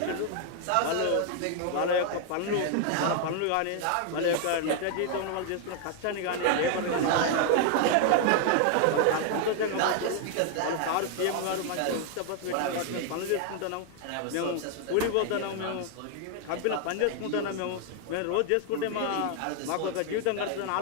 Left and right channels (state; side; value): different; both; correlation 0.00